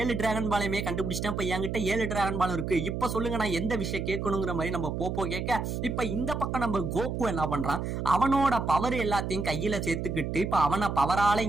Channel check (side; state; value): right; noise; hum, 3 dB below the sound